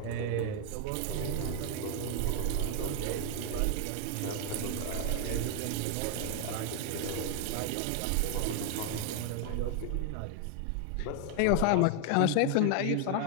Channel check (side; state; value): both; different; correlation 0.00